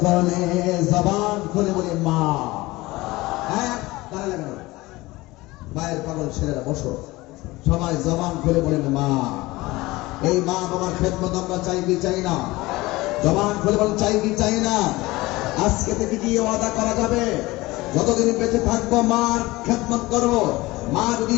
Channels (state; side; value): quieter; right; 20.2 dB